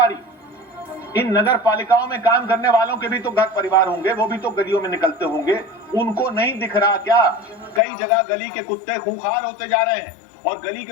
रही। इन नगर पालिकाओं में काम करने वालों के भी तो घर परिवार होंगे, वो भी तो गलियों में निकलते होंगे, उनको नहीं दिख रहा क्या? कई जगह गली के कुत्ते खूंखार होते जा रहे हैं और गली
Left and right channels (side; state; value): right; drops out; at 7.8 s